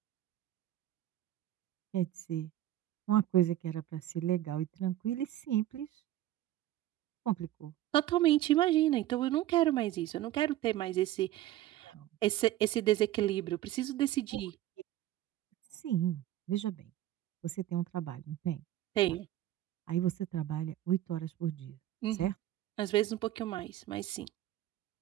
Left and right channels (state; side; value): quieter; left; 13.9 dB